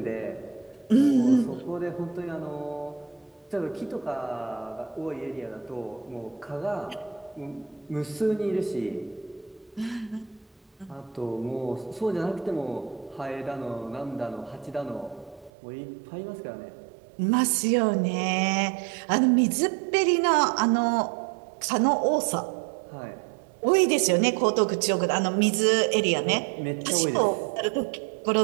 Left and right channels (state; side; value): drops out; left; at 15.5 s